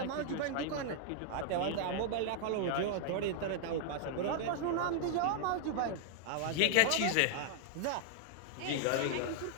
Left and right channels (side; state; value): both; different; correlation -0.01